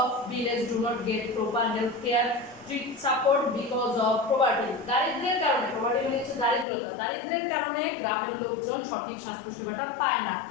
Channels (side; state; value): right; drops out; at 6.7 s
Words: village do not get proper health care support because of poverty. দারিদ্র্যের কারণে, poverty মানে হচ্ছে দারিদ্রতা, দারিদ্র্যের কারণে গ্রামের লোকজন সঠিক স্বাস্থ্য সেবাটা পায় না।